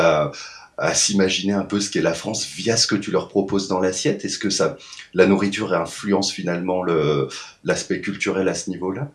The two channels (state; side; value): identical; both; correlation 1.00